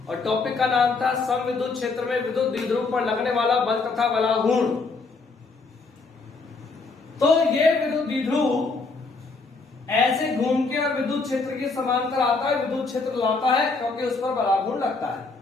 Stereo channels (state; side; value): quieter; right; 4.0 dB